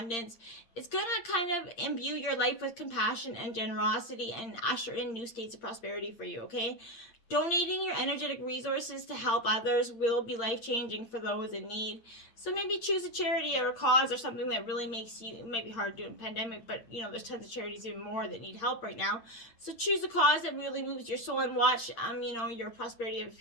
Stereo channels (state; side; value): late; right; 8.7 ms